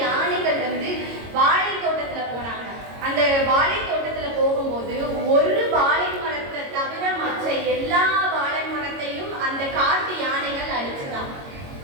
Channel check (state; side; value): late; left; 22 ms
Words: யானைகள் வாழை தோட்டத்துல போனாங்க. அந்த வாழை தோட்டத்துல போகும்போது ஒரு வாழை மரத்தை தவிர மற்ற எல்லா வாழை மரத்தையும் அந்த காட்டு யானைகள் அழிச்சுதான்.